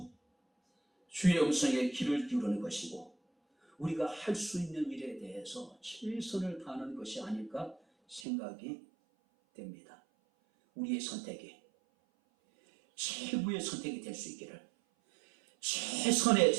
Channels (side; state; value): left; drops out; at 8.2 s